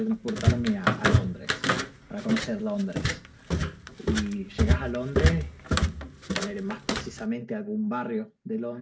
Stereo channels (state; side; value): identical; both; correlation 1.00